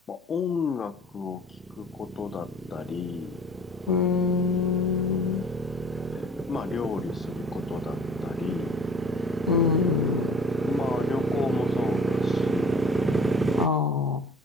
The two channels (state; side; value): normal; both; correlation 0.48